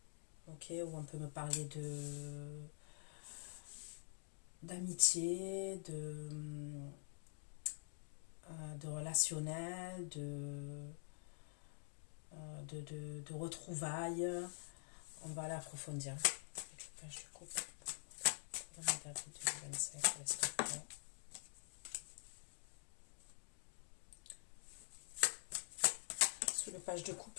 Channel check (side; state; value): right; silent; digital silence